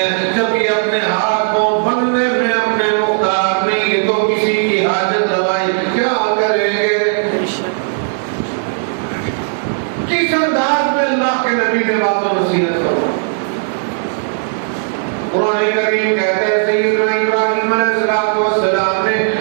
جب یہ اپنے ہاتھ پاؤں بننے میں اپنے مختار نہیں تو کسی کی حاجت روائی کیا کریں گے؟ کس انداز میں اللہ کے نبی نے بات و نصیحت کرو؟ قرآن کریم کہتا ہے سیدنا ابراہیم علیہ السلام نے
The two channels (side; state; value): left; silent; digital silence